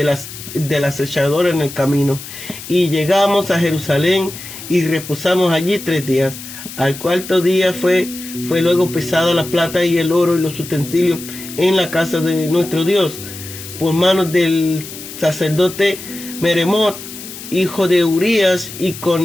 acechador en el camino. Y llegamos a Jerusalén y reposamos allí 3 días. Al cuarto día fue luego pesada la plata y el oro y los utensilios en la casa de nuestro Dios por manos del sacerdote Meremot, hijo de Urías, y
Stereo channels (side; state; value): left; noise; hiss, 12 dB below the sound